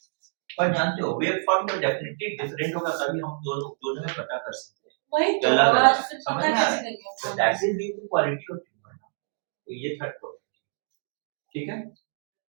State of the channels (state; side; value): silent; left; digital silence